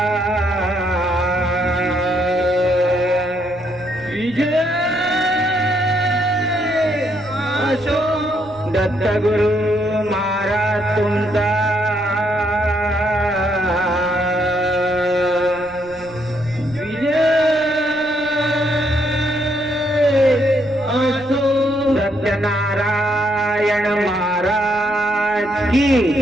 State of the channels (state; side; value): noise; right; rumble, 22 dB below the sound